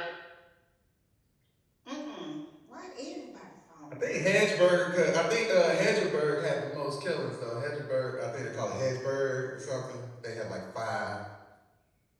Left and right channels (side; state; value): both; identical; correlation 1.00